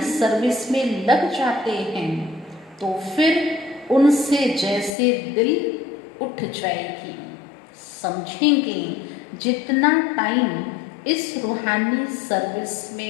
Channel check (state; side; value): drops out; right; at 4.9 s